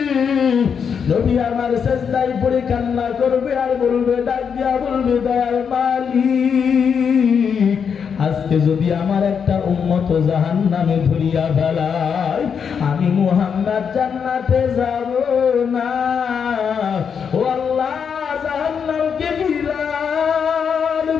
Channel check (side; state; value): right; quieter; 6.8 dB